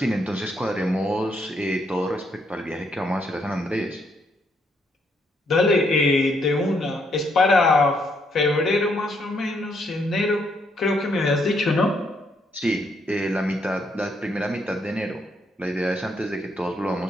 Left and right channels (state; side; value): normal; both; correlation 0.73